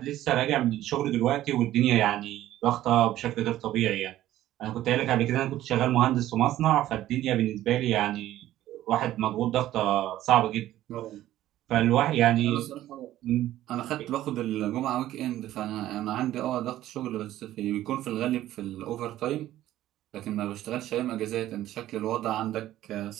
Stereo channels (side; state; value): left; quieter; 13.9 dB